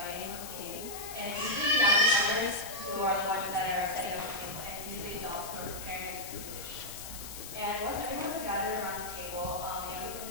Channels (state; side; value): noise; left; hiss, 10 dB below the sound